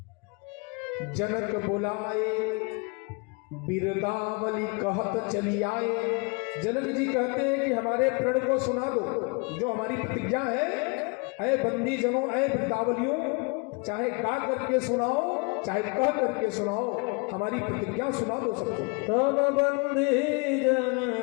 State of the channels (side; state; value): right; quieter; 30.2 dB